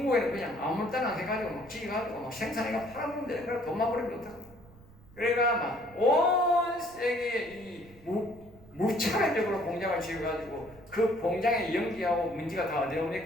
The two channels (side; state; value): right; noise; rumble, 23 dB below the sound